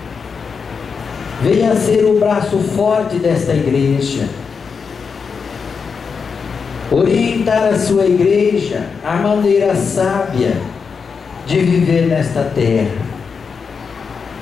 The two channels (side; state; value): right; quieter; 5.7 dB